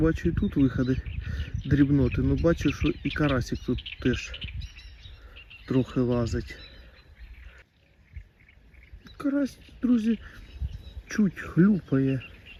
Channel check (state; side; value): identical; both; correlation 1.00